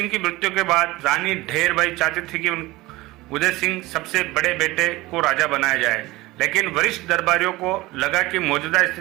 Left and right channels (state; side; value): quieter; left; 19.8 dB